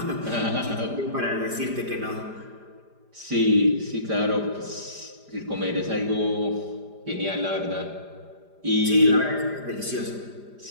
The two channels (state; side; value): late; left; 5.0 ms